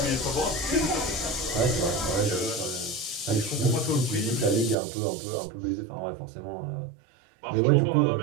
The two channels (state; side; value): drops out; left; at 4.8 s